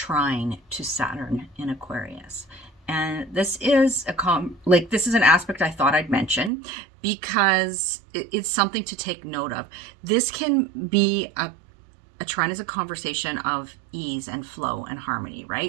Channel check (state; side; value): drops out; left; at 6.5 s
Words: to Saturn in Aquarius. And this is this is an aspect I thought I'd mention because it's something to take note of. This can be a trine is a conversation of ease and flow and harmony,